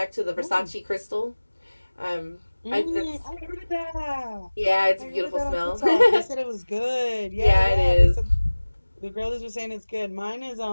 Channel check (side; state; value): both; inverted; correlation -1.00